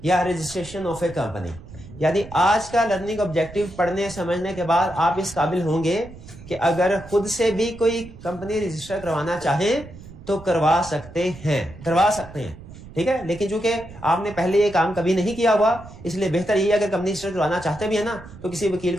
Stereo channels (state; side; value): noise; right; rumble, 17 dB below the sound